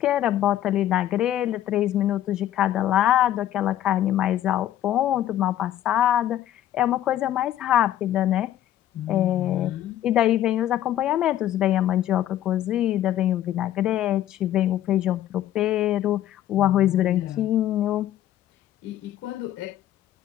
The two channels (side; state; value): right; quieter; 12.3 dB